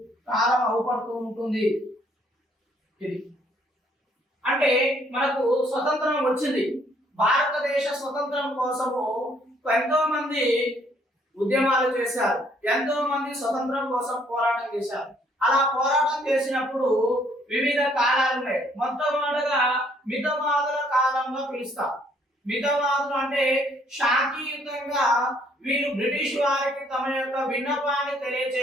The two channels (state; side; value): normal; both; correlation 0.65